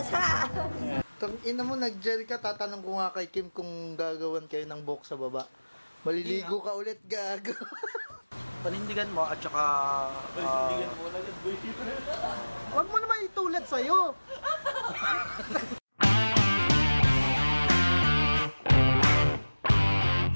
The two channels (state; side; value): inverted; both; correlation -1.00